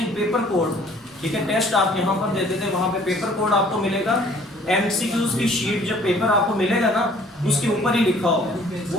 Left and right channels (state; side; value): normal; both; correlation 0.55